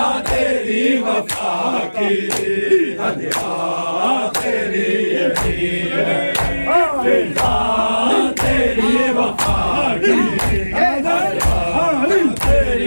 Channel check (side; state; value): both; inverted; correlation -1.00